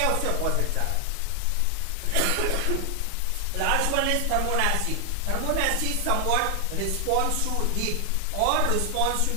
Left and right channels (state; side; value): different; both; correlation 0.00